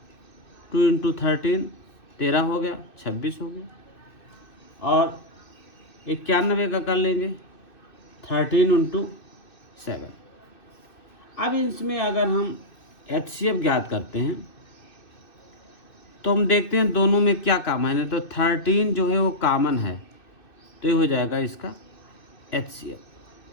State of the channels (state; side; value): late; right; 2.6 ms